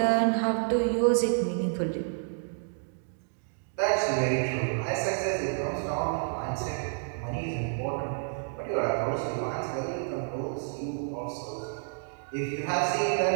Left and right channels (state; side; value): silent; left; digital silence